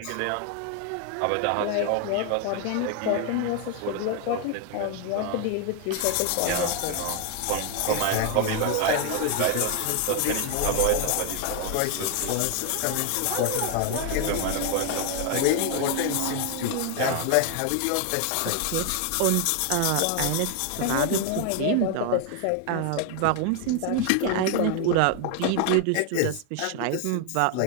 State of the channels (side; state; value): both; different; correlation 0.01